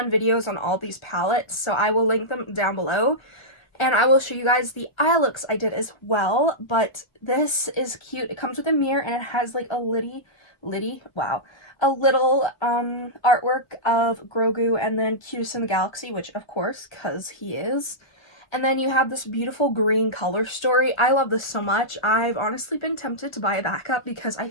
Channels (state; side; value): late; right; 1.3 ms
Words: videos on all these palettes, so I will link them down below. And I will show you guys the eye looks I did as well, but this is cute. It comes with a mirror, and it has like a little artwork of Grogu and then Cutest in the Galaxy, which of course, because he is. And then you have this beautiful green color story. I love this so much. I've honestly been tempted to buy a backup because I